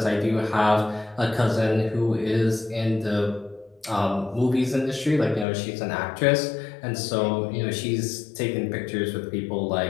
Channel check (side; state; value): right; drops out; at 5.5 s